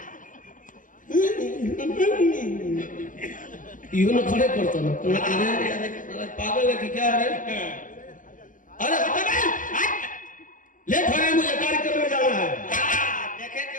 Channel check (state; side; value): late; right; 0.38 ms